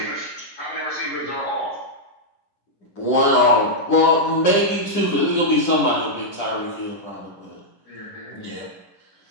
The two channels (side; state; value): right; late; 10 ms